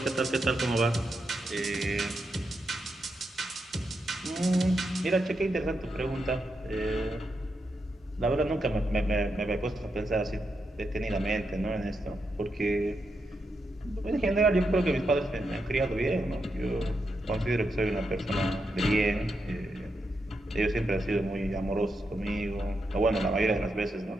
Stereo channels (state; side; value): normal; both; correlation 0.84